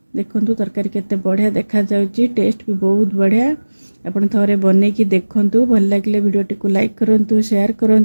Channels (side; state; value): both; inverted; correlation -1.00